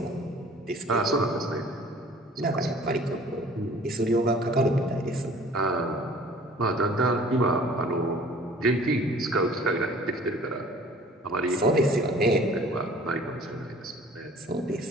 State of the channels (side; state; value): both; normal; correlation 0.50